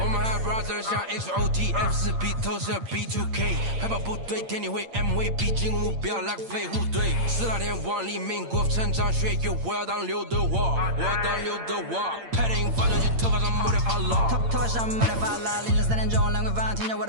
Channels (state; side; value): late; left; 8.8 ms